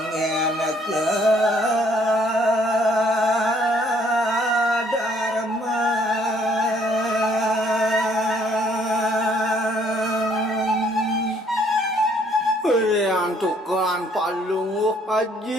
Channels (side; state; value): both; normal; correlation 0.64